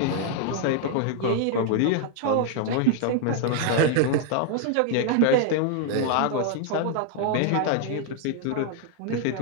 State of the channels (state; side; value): different; both; correlation 0.00